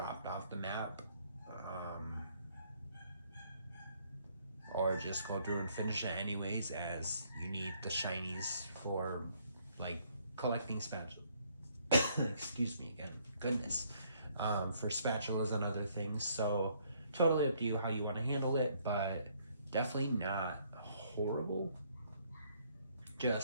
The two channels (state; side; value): inverted; both; correlation -0.67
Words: off the map, or just go through and finish it anyways, as you need the shinies for like collecting spatulas. Excuse me again, goodness. For spatulas and other things. So totally up to you how you want to handle it, but definitely not horrible,